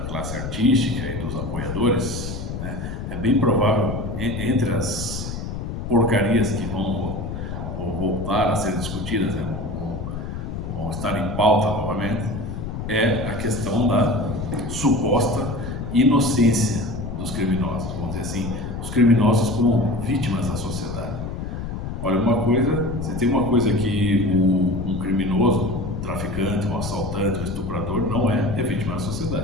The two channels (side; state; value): left; noise; rumble, 6 dB below the sound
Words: classe artística e dos apoiadores, né, é bem provável, entre as porcarias que vão voltar a ser discutidas, né, vão estar em pauta novamente, é a questão da suposta inocência dos criminosos, vamos dizer assim, os criminosos como vítimas da sociedade. Olha, se tem uma coisa que um criminoso, um traficante, um assaltante, um estuprador não é vítima da